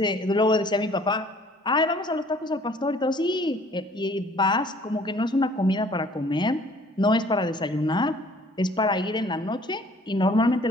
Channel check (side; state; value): both; normal; correlation 0.55